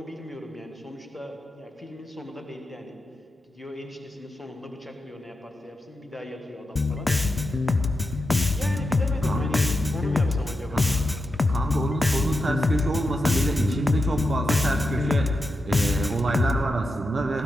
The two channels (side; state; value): both; normal; correlation 0.88